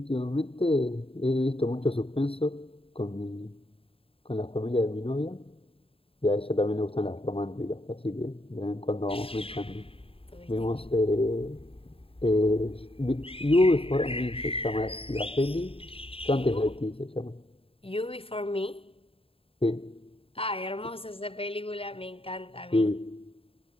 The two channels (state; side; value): late; right; 0.27 ms